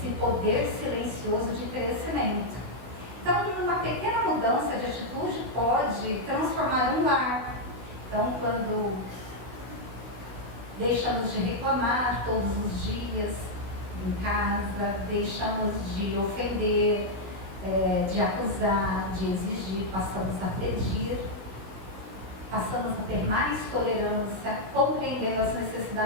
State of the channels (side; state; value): left; late; 16 ms